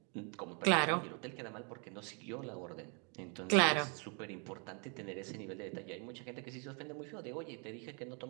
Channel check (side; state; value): left; quieter; 36.5 dB